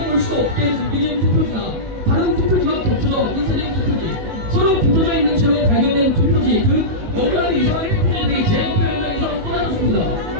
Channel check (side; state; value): left; late; 19 ms